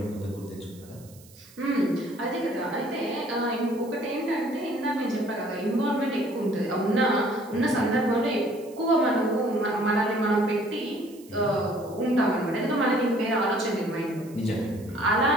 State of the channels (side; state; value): right; noise; hiss, 24 dB below the sound